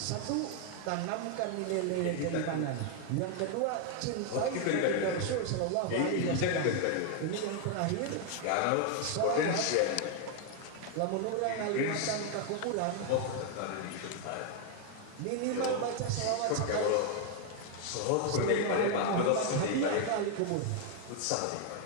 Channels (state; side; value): different; both; correlation 0.00